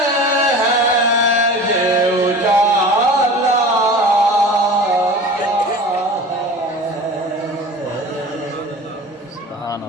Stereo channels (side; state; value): both; normal; correlation 0.38